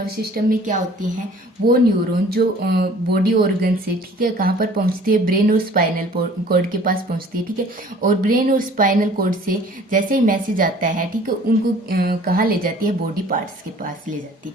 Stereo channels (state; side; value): normal; both; correlation 0.51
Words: सिस्टम में क्या होती हैं, वो न्यूरॉन जो बॉडी ऑर्गन से, ठीक है, कहाँ पर पहुंचती है, ब्रेन और स्पाइनल कॉर्ड के पास पहुंचती है, ठीक है। और ब्रेन और स्पाइनल कॉर्ड से जैसे ही मैसेज आता है, ठीक है, उनको कहाँ ले जाती है, बॉडी पार्ट्स के पास ले जाती है,